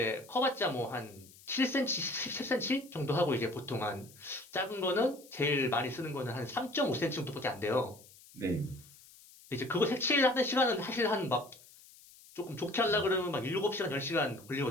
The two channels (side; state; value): left; noise; hiss, 23 dB below the sound